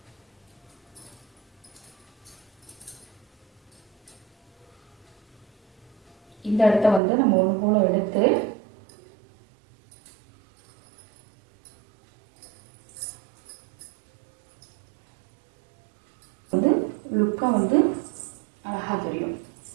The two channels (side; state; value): left; drops out; at 7.0 s